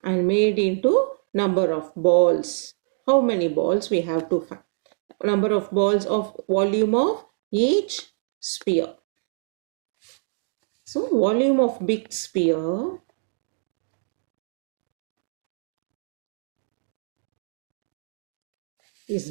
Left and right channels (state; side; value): silent; left; digital silence